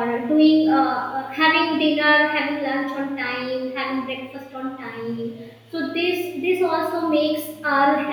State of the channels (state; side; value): identical; both; correlation 1.00